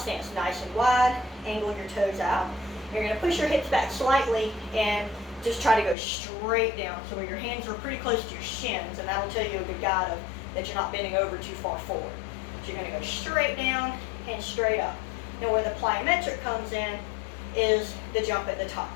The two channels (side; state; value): right; drops out; at 6.0 s